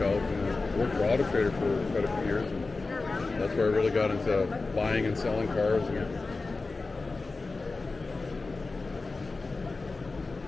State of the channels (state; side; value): quieter; right; 3.7 dB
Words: out. And I worked for Auto Trader for quite a few years, and that's where I really got into buying and selling cars. And